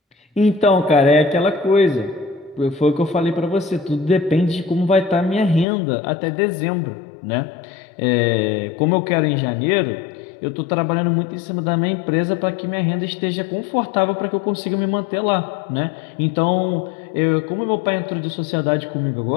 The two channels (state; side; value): drops out; right; at 5.7 s